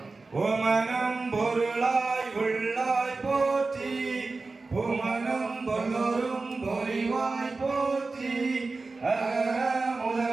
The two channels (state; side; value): quieter; left; 3.8 dB